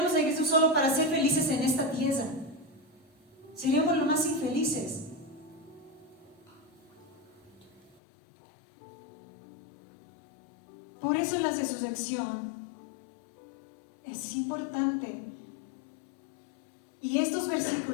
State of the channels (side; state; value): right; drops out; at 8.0 s